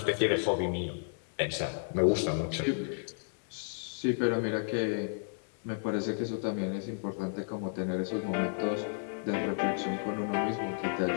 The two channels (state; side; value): silent; right; 56 dB below the other